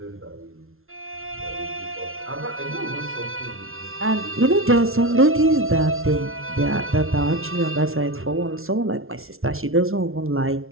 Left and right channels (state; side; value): late; left; 0.62 ms